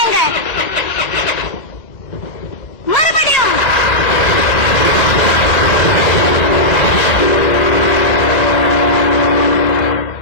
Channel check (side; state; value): right; late; 2.0 ms